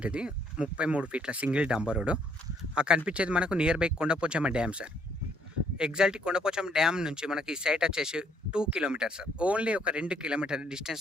ఇది 33 ఫీట్ల సింగిల్ డాంబర్ రోడ్. ఆ కనిపించేది మనకు near by Kondapochamma dam sir. Exactly Kondapochamma dam నుంచి మనకి ఈ సైట్ వచ్చేసి 2 కిలోమీటర్స్ సార్. ఓన్లీ ఒక 2 కిలోమీటర్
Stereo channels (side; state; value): both; normal; correlation 0.68